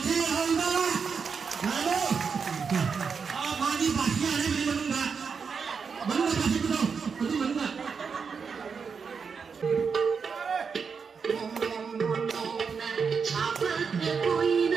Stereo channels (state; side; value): quieter; left; 5.8 dB